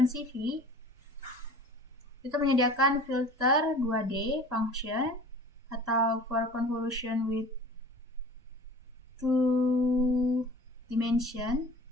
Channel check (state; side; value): normal; both; correlation 0.43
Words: itu menyediakan filter 2D function atau for convolution with two dimension